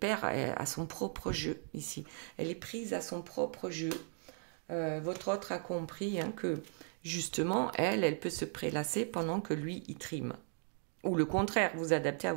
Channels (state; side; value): silent; left; 53 dB below the other